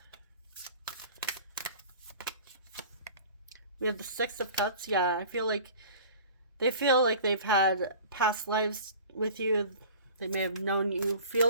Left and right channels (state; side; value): inverted; both; correlation -0.42